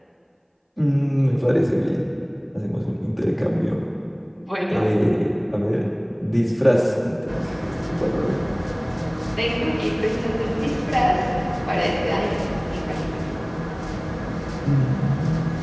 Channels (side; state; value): both; identical; correlation 1.00